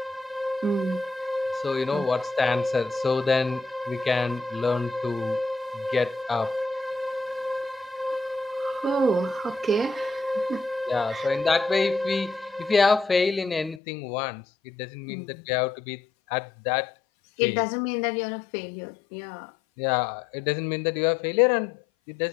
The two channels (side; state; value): right; drops out; at 13.8 s